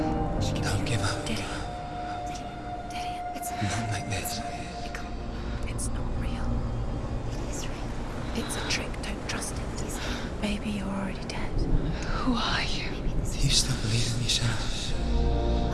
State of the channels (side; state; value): both; identical; correlation 1.00